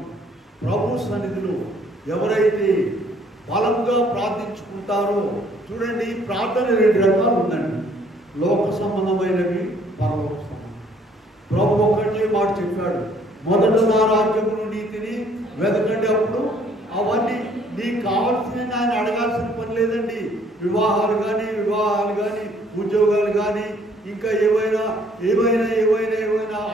ప్రభు సన్నిధిలో ఎవరైతే బలంగా ప్రార్థించుకుంటారో, చూడండి ప్రార్థన 2 రకాలు ఉందండి. లోక సంబంధమైనవి, పరలోక సంబంధం. ప్రభు ఒకటే మాట చెప్పాడు, మొదట నా రాజ్యమును నీతిని వెతకండి, అప్పుడు అవన్నీ నీకు కావాల్సిన ఆయన అడగాల్సిన పని లేదండి. వివాహాలు కానీ ఉద్యోగాలు కానీ ఇంకా ఏవైనా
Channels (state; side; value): normal; both; correlation 0.62